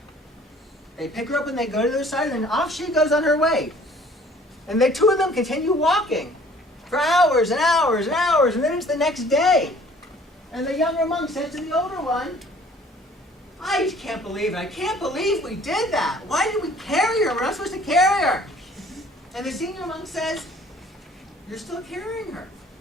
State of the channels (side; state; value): both; normal; correlation 0.54